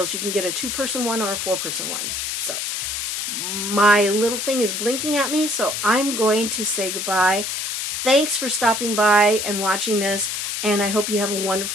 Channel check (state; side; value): noise; left; hiss, 3 dB below the sound